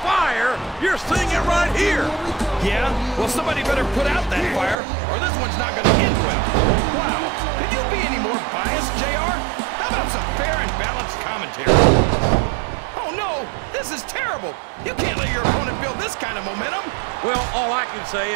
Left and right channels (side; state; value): left; drops out; at 4.8 s